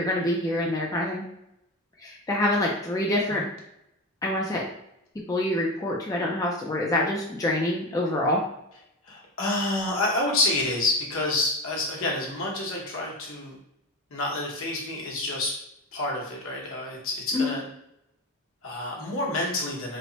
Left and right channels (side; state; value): both; normal; correlation 0.23